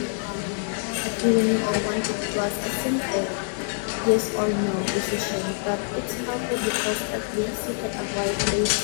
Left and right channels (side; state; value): right; silent; 61 dB below the other